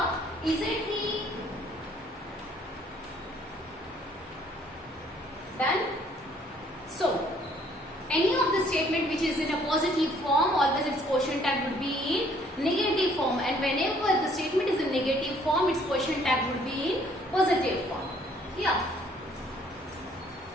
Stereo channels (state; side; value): normal; both; correlation 0.62